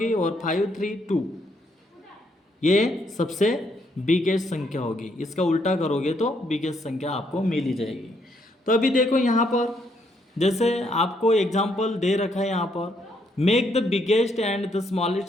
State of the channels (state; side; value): normal; both; correlation 0.73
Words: और 532 ये सबसे बिगेस्ट संख्या होगी। इसका उल्टा करोगे तो बिगेस्ट संख्या आपको मिल ही जाएगी। तो अभी देखो यहाँ पर जैसे आपको एग्जाम्पल दे रखा है, यहाँ पर make the biggest and the